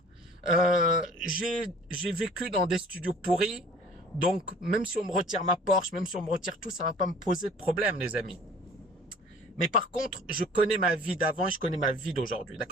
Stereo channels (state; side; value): normal; both; correlation 0.49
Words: J'ai vécu dans des studios pourris. Donc, même si on me retire ma Porsche, même si on me retire tout, ça va pas me poser de problème, les amis. Mais par contre, je connais ma vie d'avant et je connais ma vie d'aujourd'hui.